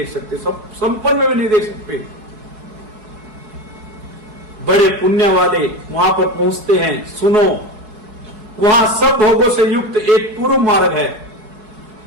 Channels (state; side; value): late; left; 4.7 ms